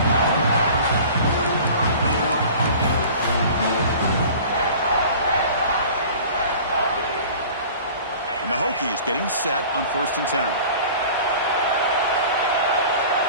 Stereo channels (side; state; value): both; inverted; correlation -0.43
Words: And the Hokies getting set on 1st and 10.